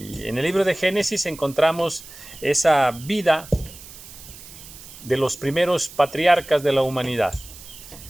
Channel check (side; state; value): right; noise; hiss, 17 dB below the sound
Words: en el libro de Génesis encontramos esa vida de los primeros patriarcas de la humanidad.